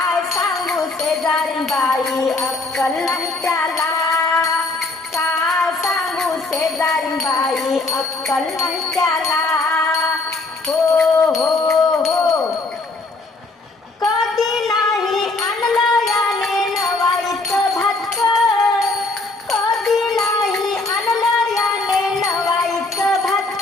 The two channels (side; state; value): right; quieter; 3.3 dB